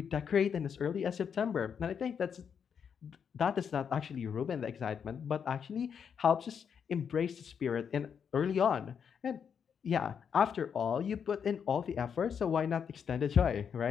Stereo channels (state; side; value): quieter; right; 7.2 dB